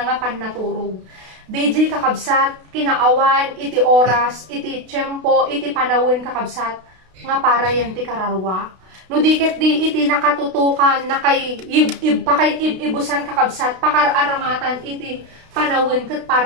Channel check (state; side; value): late; left; 32 ms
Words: nga pannaturog. DJ kakabsat kinaawan iti oras iti tiyempo iti panawin kakabsat nga para yan ti kararwa. No diket di iti nakatutukan na kay ibusan kakabsat pakararamatan iti panawin ket